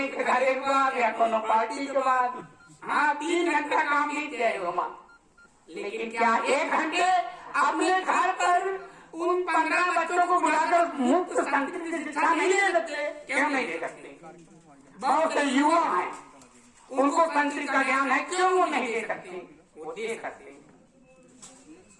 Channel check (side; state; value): both; identical; correlation 1.00